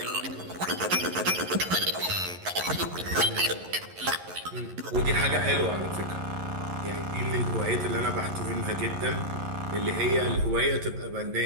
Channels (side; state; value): left; late; 11 ms